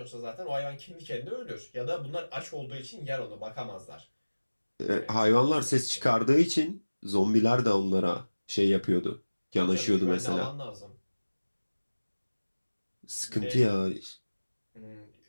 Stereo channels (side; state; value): both; inverted; correlation -1.00